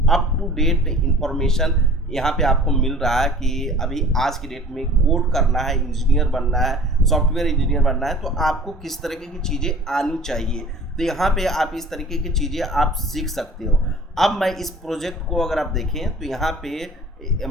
अप टू डेट इंफॉर्मेशन यहाँ पे आपको मिल रहा है कि अभी आज की डेट में कोड करना है, इंजीनियर बनना है, सॉफ्टवेयर इंजीनियर बनना है, तो आपको किस तरीके की चीज़ें आनी चाहिए। तो यहाँ पे आप इस तरीके की चीज़ें आप सीख सकते हो। अब मैं इस प्रोजेक्ट को अगर आप देखें तो यहाँ पे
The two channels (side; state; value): both; normal; correlation 0.46